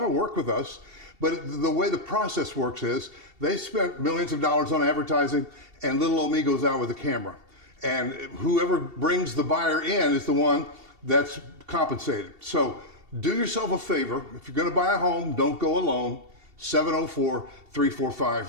to work with us. But the way the process works is they spent millions of dollars on advertising, and little old me goes out with a camera. And whoever brings the buyer in is the one that's compensated. So do yourself a favor. If you're going to buy a home, don't go alone.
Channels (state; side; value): late; left; 2.7 ms